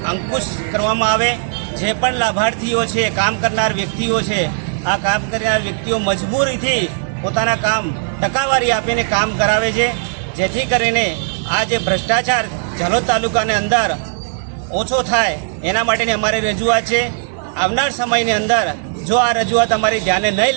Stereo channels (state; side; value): silent; left; 68 dB below the other